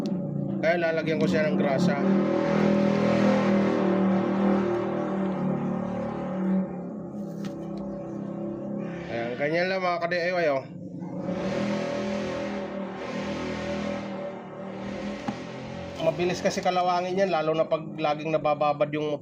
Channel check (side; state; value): both; identical; correlation 1.00